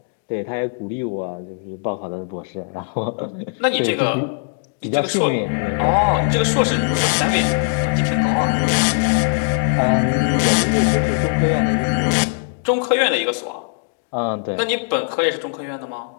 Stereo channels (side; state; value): right; silent; digital silence